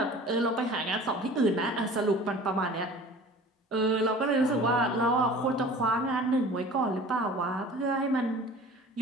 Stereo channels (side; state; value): both; normal; correlation 0.43